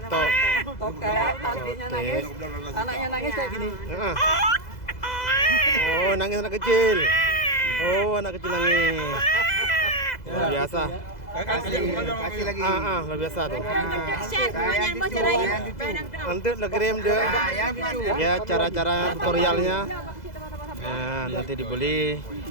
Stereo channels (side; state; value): right; late; 2.0 ms